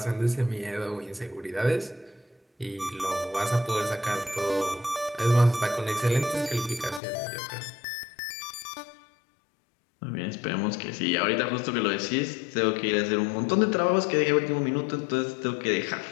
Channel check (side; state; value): right; drops out; at 7.0 s